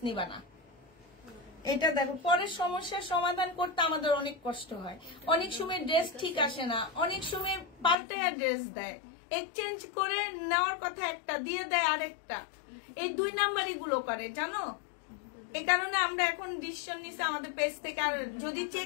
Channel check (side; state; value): right; drops out; at 8.0 s